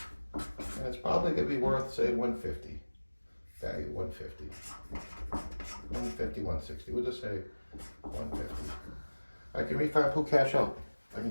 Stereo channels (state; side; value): inverted; both; correlation -1.00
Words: and it's probably gonna be worth, say, 150. Value 150. 150, 160. We'll just say 150. I can refi and pull cash out. I